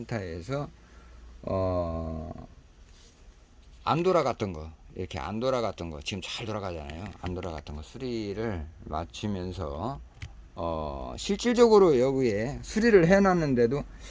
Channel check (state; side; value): identical; both; correlation 1.00